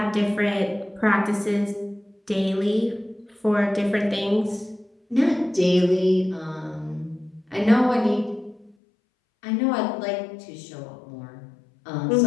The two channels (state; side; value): drops out; right; at 8.8 s